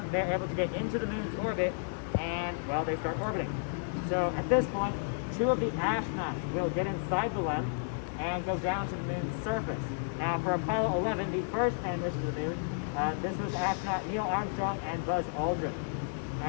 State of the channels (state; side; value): silent; right; digital silence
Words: they're able to get into the moon's orbit and, well, they start orbiting. So at this point, 2 of the astronauts will get inside the LEM and go down to the moon's surface. Now for Apollo 11, the first man mission to the moon, this was astronaut Neil Armstrong and Buzz Aldrin.